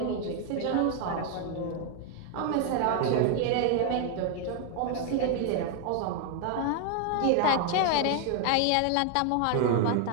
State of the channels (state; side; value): different; both; correlation 0.01